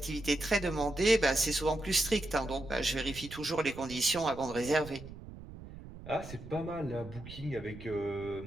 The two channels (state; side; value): noise; right; rumble, 14 dB below the sound